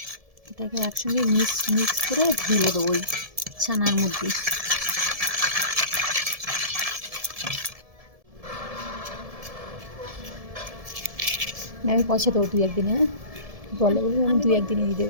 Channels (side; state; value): left; late; 1.7 ms